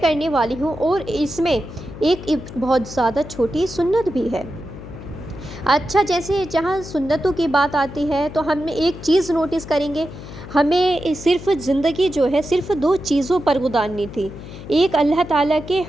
वाली हूँ और इसमें एक बहुत ज़्यादा छोटी सुन्नत भी है। अच्छा, जैसे जहाँ सुन्नतों की बात आती है तो हम एक चीज़ नोटिस करेंगे, हमें सिर्फ़ ज़िंदगी जो है सिर्फ़ दो चीज़ों पर गुज़ारनी थी, एक अल्लाह ताला के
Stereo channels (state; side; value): noise; left; hum, 13 dB below the sound